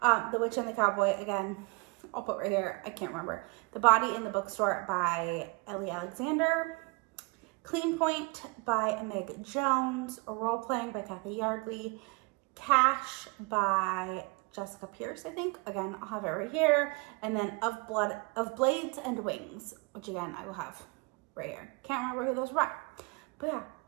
The Witch and the Cowboy, again, I'll put right here, I can't remember. The Body in the Bookstore by Ellie Alexander. Clean Point by Meg Jones. Role Playing by Cathy Yardley. Cash by Jessica Pierce, I think. Again, I'll have it right here. And then Of Blades and Wings, which again, I will have right here. Can't remember who those were. But yeah,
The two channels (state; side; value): quieter; left; 28.3 dB